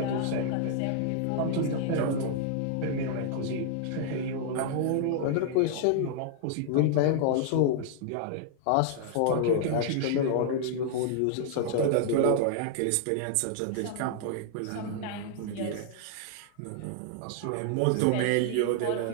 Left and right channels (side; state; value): both; different; correlation -0.01